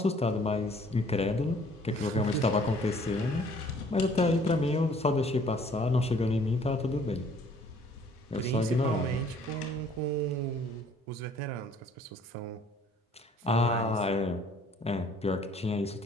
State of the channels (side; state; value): both; normal; correlation 0.58